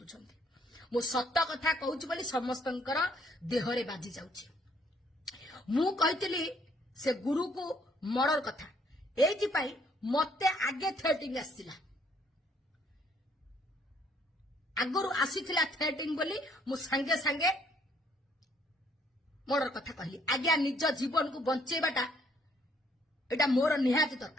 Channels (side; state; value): both; normal; correlation 0.66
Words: मु सत्य कथा कहूची बोली समस्तंकर देहरे बाजी जाउची मु कहितली से गुरु को मर्डर कथा एथि पाई मते आगे थ्रेटिंग आसीला आगरु आसीथिला थ्रेटिंग बोली मु संगे संगे मर्डर कथा कहली आज्ञा निज जीवन को बंचेबाटा एटा मोर निहाती